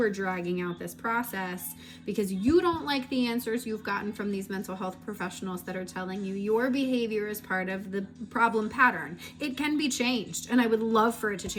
are dragging out this process because you don't like the answers you've gotten from these mental health professionals that are telling you your behavior is part of the problem pattern. It can be changed, and I would love for it to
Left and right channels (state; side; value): identical; both; correlation 1.00